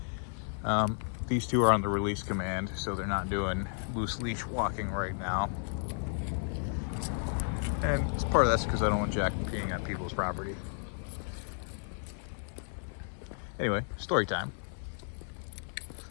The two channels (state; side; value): silent; right; 56 dB below the other